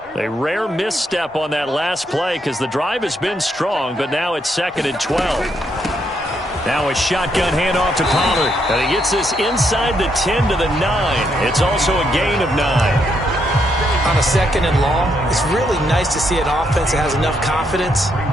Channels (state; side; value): normal; both; correlation 0.76